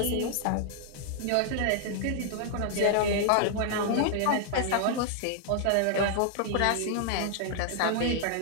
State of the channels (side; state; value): both; different; correlation -0.01